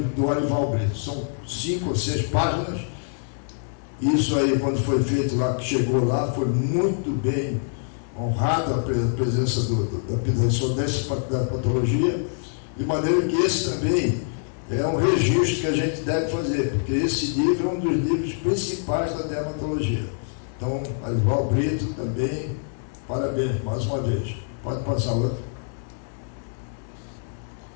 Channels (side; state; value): right; silent; digital silence